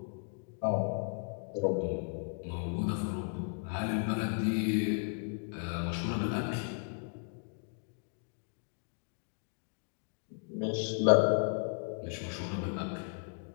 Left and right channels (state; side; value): silent; right; 54 dB below the other